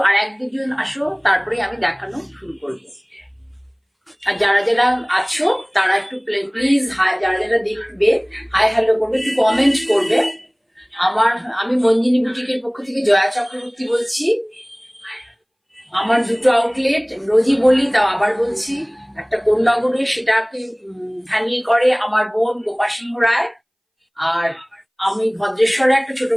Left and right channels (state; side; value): identical; both; correlation 1.00